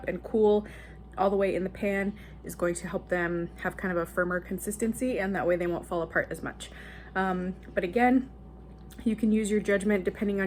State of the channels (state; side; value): identical; both; correlation 1.00